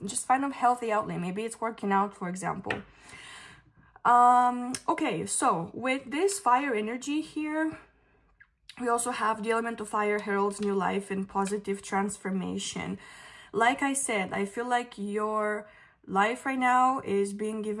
Just find a healthy outlet. Maybe it's working out, for example. Okay, so with this fire energy here, we also have the element of fire heralds new life and positive transformation. Like I said, I feel like your life right now is being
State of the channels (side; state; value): both; identical; correlation 1.00